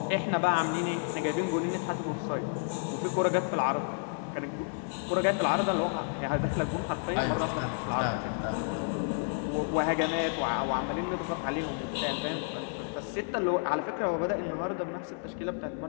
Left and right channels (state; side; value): silent; right; 57 dB below the other